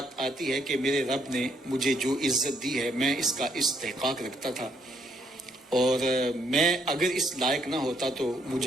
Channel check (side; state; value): both; normal; correlation 0.71